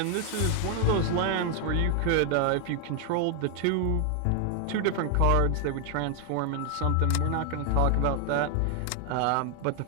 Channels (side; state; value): both; different; correlation 0.00